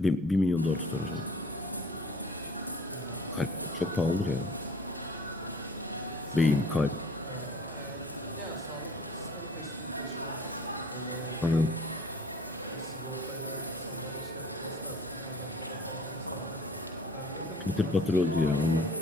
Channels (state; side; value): normal; both; correlation 0.50